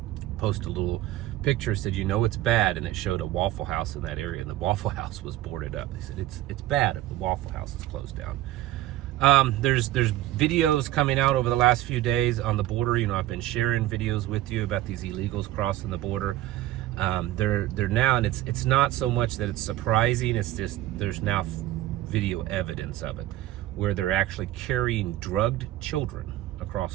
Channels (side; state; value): left; quieter; 14.9 dB